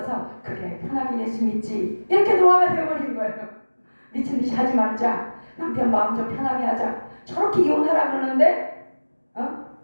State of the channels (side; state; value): both; inverted; correlation -1.00